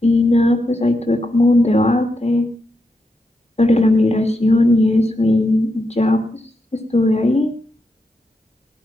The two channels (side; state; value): both; normal; correlation 0.84